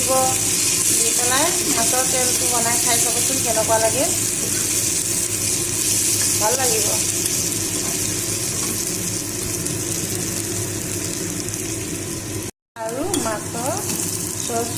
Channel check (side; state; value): both; identical; correlation 1.00